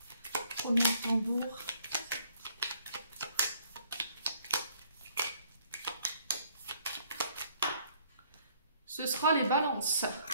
premiers tambours. Ce sera les balances.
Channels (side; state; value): both; inverted; correlation -0.64